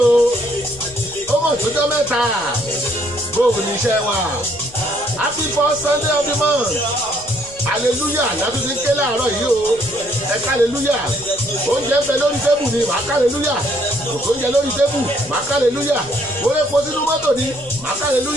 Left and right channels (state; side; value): noise; left; rumble, 22 dB below the sound